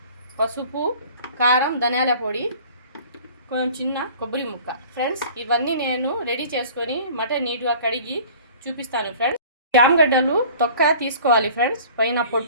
పసుపు, కారం, ధనియాల పొడి, కొంచెం చిన్న కొబ్బరి ముక్క. ఫ్రెండ్స్, ఇవన్నీ నేను రెడీ చేసుకొని మటన్ నీట్గా కడిగి చూపిస్తాను ఫ్రెండ్స్. చామగడ్డలు తొక్క తీసుకోవాలి ఫ్రెండ్స్. పైన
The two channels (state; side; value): inverted; both; correlation -0.47